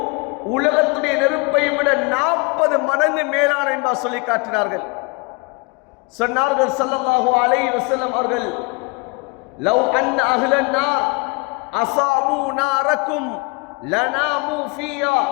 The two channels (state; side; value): quieter; right; 29.2 dB